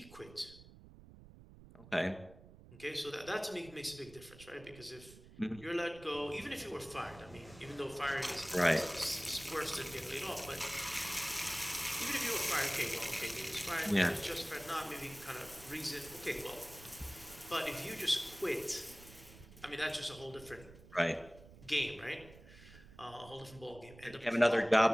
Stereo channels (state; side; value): noise; right; rumble, 19 dB below the sound